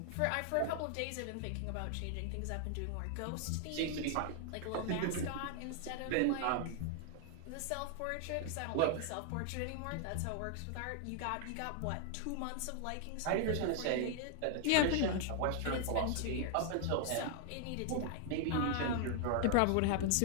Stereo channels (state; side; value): different; both; correlation 0.00